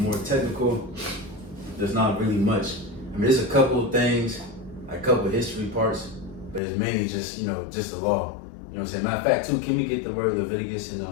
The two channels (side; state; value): right; drops out; at 6.6 s